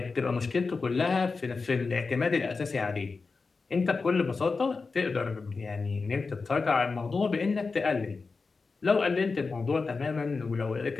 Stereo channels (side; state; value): right; quieter; 4.3 dB